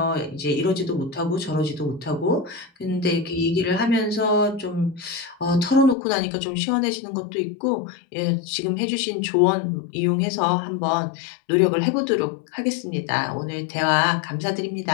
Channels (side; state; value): right; drops out; at 6.0 s